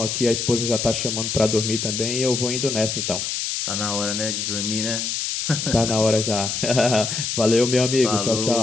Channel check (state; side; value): noise; left; hiss, 2 dB below the sound